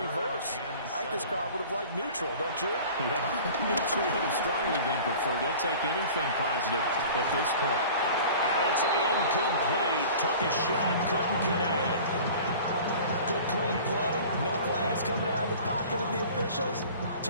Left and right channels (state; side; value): inverted; both; correlation -0.42